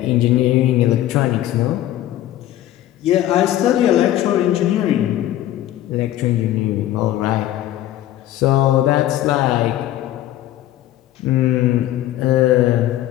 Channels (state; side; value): quieter; right; 13.5 dB